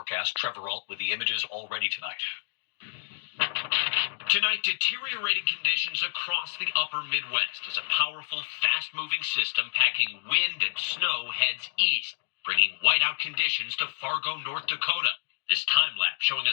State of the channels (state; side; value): silent; right; digital silence